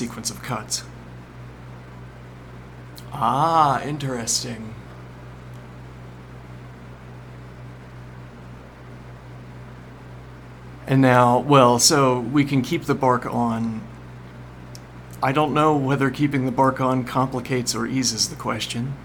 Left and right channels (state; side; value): identical; both; correlation 1.00